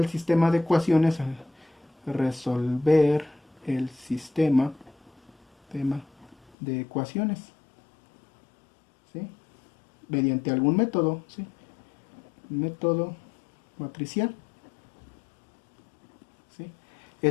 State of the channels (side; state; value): right; drops out; at 6.5 s